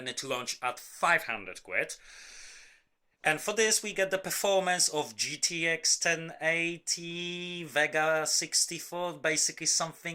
it launched at 500 quid. And for this we get the performance of GTX 1080, Vega 64, basically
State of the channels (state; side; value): identical; both; correlation 1.00